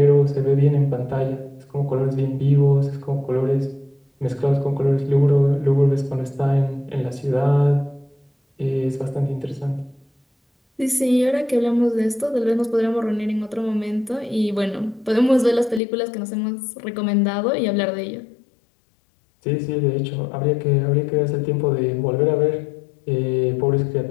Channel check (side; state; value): right; drops out; at 15.8 s